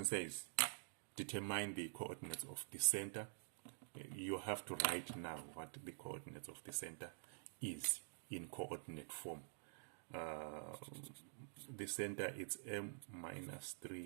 says, determine the coordinates of the center. You have to write now what the coordinates of the center is in coordinate form. The center, it's m minus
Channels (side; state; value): left; silent; digital silence